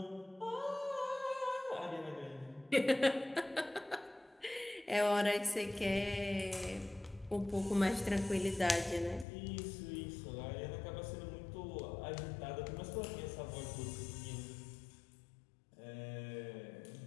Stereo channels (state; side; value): drops out; right; at 9.2 s